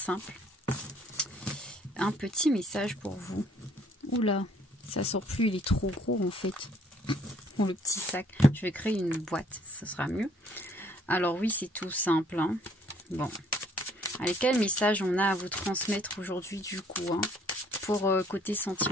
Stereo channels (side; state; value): both; normal; correlation 0.62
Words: Un petit message pour vous. Oula, ça sort plus, il est trop gros en fait. Le petit sac, je vais créer une boîte, ce sera mieux. Alors oui, c'est tout simple. Hein. Bon, allez, quel message on a à vous transmettre aujourd'hui du coup hein, pour côté